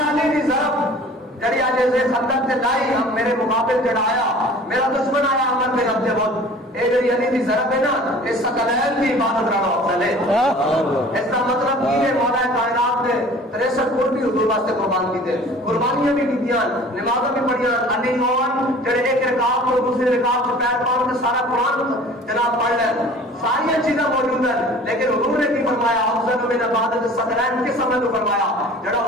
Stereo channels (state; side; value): normal; both; correlation 0.46